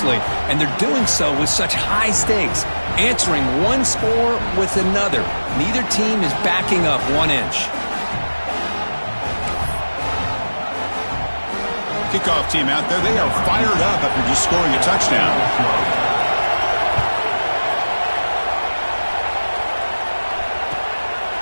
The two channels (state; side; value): inverted; both; correlation -1.00